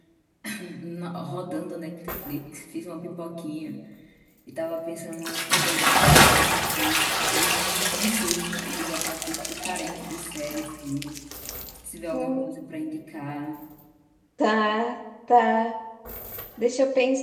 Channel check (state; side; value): identical; both; correlation 1.00